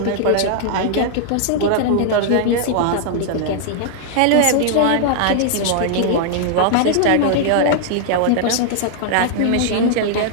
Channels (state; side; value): different; both; correlation -0.01